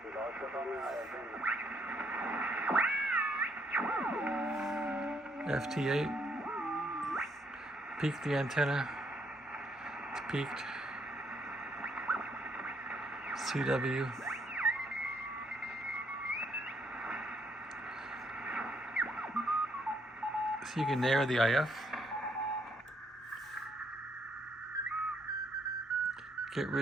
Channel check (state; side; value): normal; both; correlation 0.71